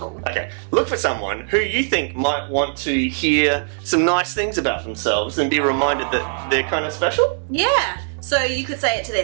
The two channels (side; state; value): left; silent; digital silence